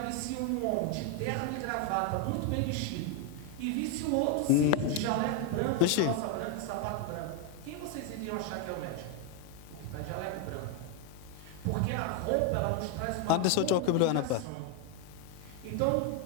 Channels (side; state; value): both; different; correlation 0.01